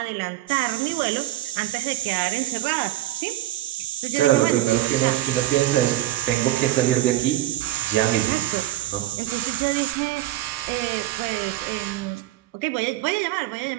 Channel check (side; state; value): left; quieter; 15.0 dB